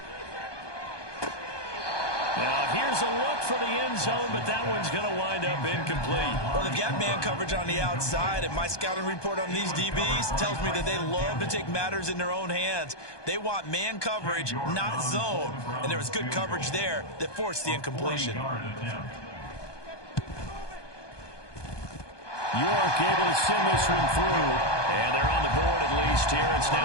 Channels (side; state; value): right; late; 1.2 ms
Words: Now here's a look for the end zone, but that one's going to wind up incomplete. Well, they've got man coverage on the outside, and my scouting report on these DBs tells me that they love to take matters in their own hands. They want man coverage, not zone, and there was good coverage there that forced the incompletion. York able to send this one through, and they're on the board at least here. It's